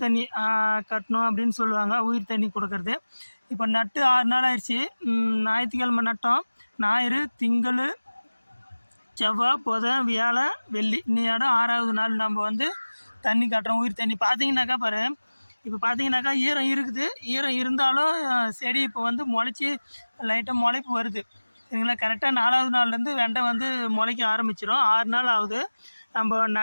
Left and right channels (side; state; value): both; inverted; correlation -1.00